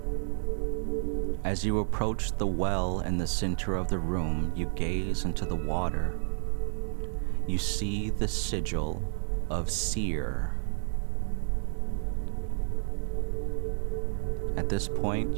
As you approach the well in the center of the room, you gaze into the water. You see the sigil of SEERE. At this point,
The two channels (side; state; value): left; silent; digital silence